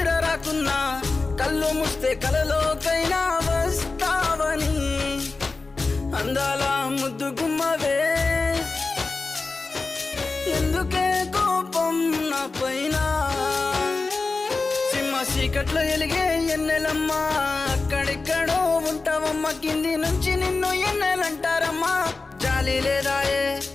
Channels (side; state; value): right; quieter; 3.8 dB